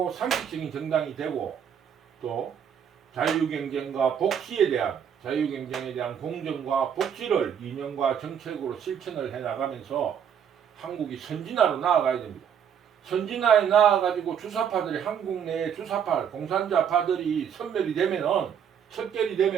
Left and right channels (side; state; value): left; quieter; 8.2 dB